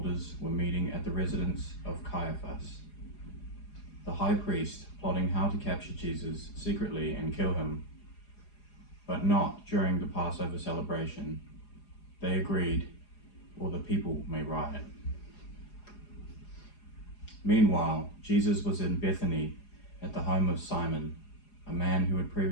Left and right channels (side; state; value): right; late; 4.8 ms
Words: were meeting at the residence of Caiaphas, the high priest, plotting how to capture Jesus secretly and kill him, but not during the Passover celebration. They agreed, or the people may riot. Meanwhile, Jesus was in Bethany at the home of Simon, a man who had